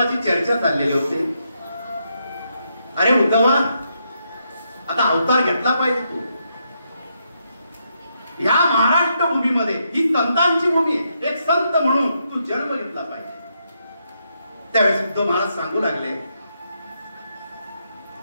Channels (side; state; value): both; inverted; correlation -0.79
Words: चर्चा चाललेली होती, अरे उद्धवा, आता अवतार घेतला पाहिजे तू. ह्या महाराष्ट्र भूमीमध्ये ही संतांची भूमी आहे, एक संत म्हणून तू जन्म घेतला पाहिजे. त्यावेळेस उद्धव महाराज सांगू लागले,